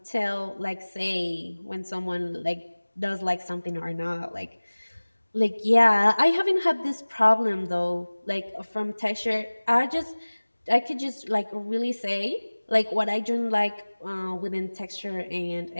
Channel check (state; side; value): inverted; both; correlation -1.00